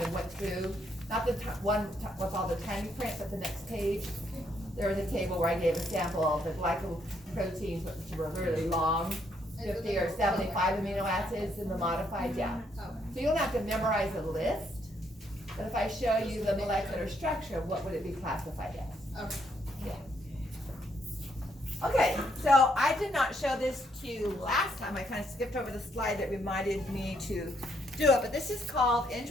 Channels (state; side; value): normal; both; correlation 0.73